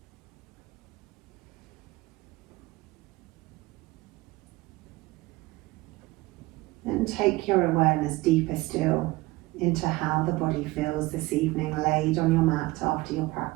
And take your awareness deeper still into how the body feels this evening laid on your mat after your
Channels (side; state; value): left; quieter; 20.5 dB